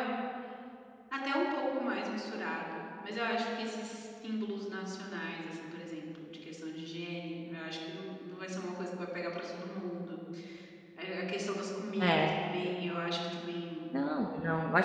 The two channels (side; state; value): both; identical; correlation 1.00